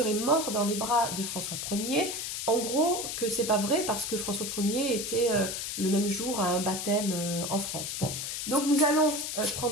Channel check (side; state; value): left; noise; hiss, 4 dB below the sound